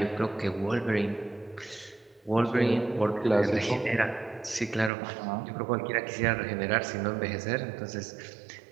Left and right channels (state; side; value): drops out; left; at 4.9 s